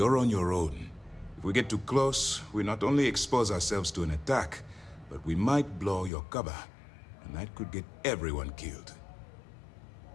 on your own. If we get too close, we not only expose ourselves to an attack, but we might blow your cover, and that could get everyone killed.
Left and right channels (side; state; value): right; drops out; at 6.1 s